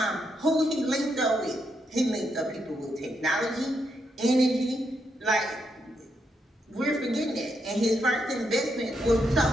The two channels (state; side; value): normal; both; correlation 0.80